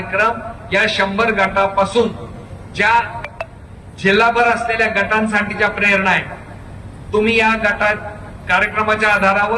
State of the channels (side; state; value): both; identical; correlation 1.00